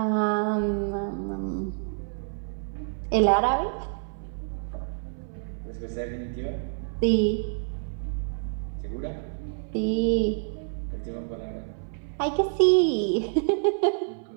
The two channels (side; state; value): left; silent; 60 dB below the other